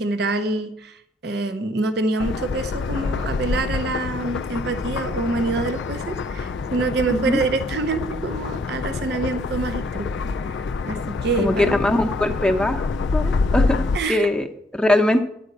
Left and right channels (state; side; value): normal; both; correlation 0.66